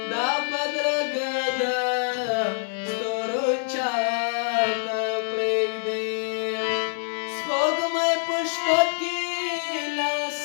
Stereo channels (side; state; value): right; silent; digital silence